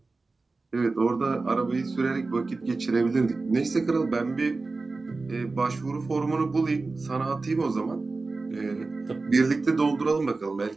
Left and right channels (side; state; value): left; quieter; 3.7 dB